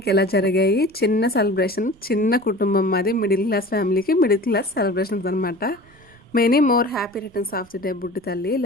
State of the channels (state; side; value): noise; right; rumble, 28 dB below the sound